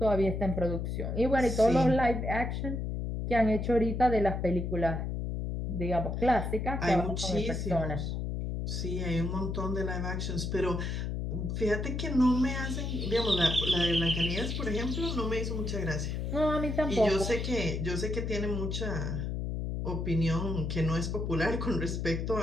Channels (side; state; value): left; noise; hum, 2 dB below the sound